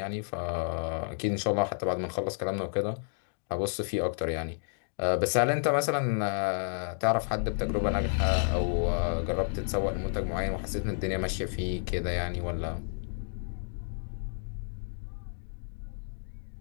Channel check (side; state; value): right; silent; digital silence